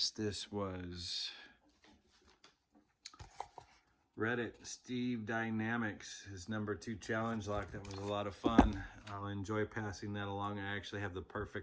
This was Reddit, SteveDynamics, his #2 challenge lock. That was a lot of fun. I'll enjoy passing that along. I actually have the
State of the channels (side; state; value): both; identical; correlation 1.00